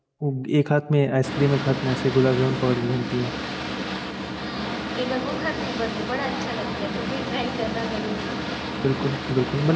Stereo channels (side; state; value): both; identical; correlation 1.00